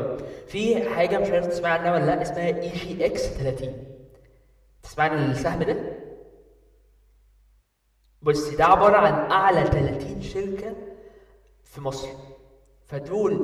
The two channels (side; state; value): both; identical; correlation 1.00